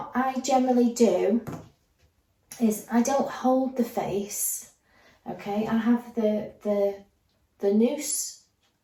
I generally do is I don't hold the face, okay? I have the noose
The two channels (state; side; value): identical; both; correlation 1.00